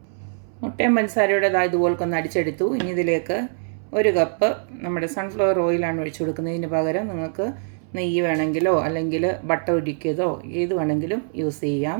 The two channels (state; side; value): silent; left; 62 dB below the other